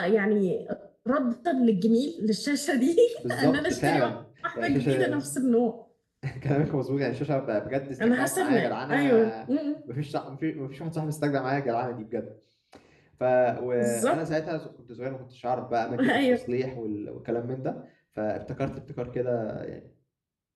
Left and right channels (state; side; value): identical; both; correlation 1.00